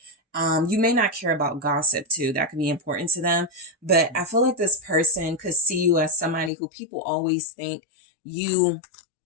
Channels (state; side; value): drops out; right; at 6.5 s